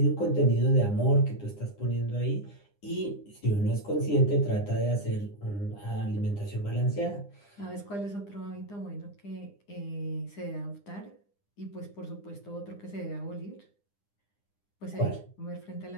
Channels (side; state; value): right; late; 9.9 ms